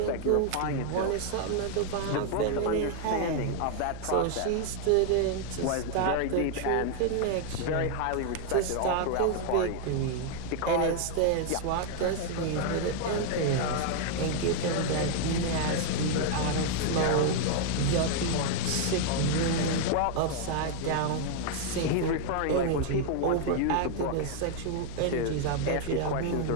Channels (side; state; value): both; different; correlation 0.00